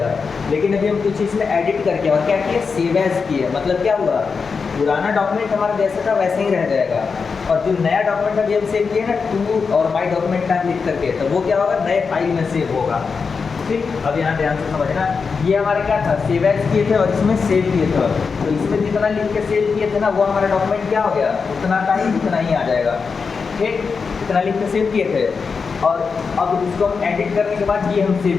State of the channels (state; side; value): quieter; right; 5.2 dB